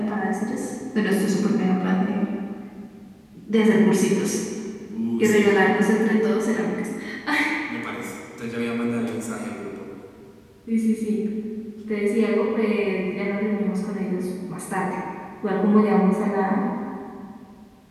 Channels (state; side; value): identical; both; correlation 1.00